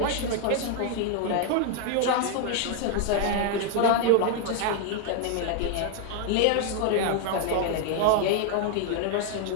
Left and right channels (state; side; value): different; both; correlation 0.00